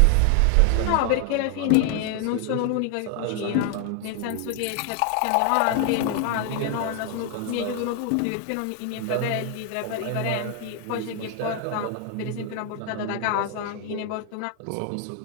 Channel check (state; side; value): different; both; correlation 0.01